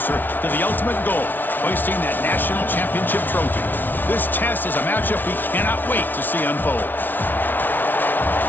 to the ultimate goal, hoisting that national championship trophy. This test is a matchup we cannot wait to see unfold.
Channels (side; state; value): right; late; 0.089 ms